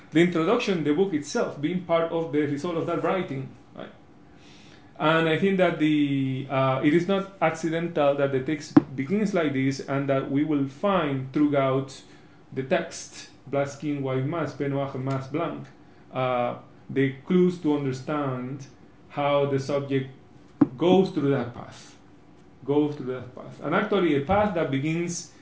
The introduction, the book itself, being part of the result of that writing. Right? And I think that it is not accidental that the text begins like this, and that we will find throughout the text, Black Skin, White Mask, Peau Noire, Masque Blanc, the clues to understand how the subject goes through that path. And actually a path that begins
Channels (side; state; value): both; identical; correlation 1.00